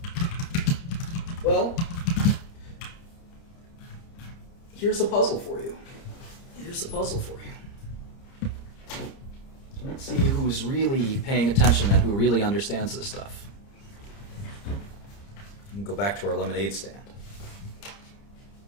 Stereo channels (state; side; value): late; right; 30 ms